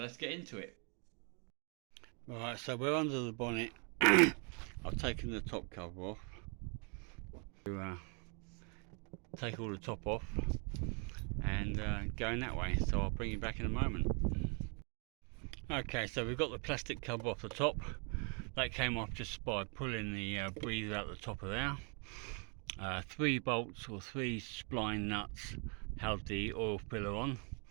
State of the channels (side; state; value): left; quieter; 37.1 dB